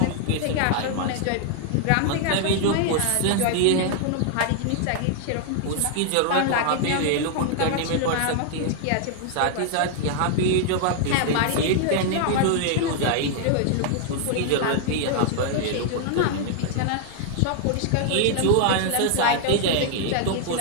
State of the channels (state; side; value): different; both; correlation 0.00